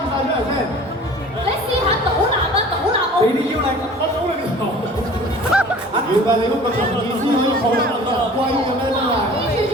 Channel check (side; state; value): both; normal; correlation 0.45